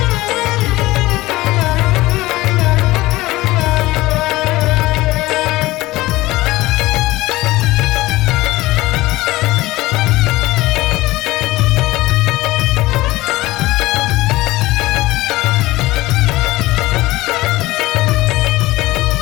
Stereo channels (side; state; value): right; quieter; 18.7 dB